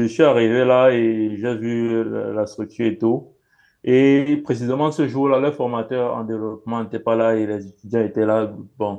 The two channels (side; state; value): both; identical; correlation 1.00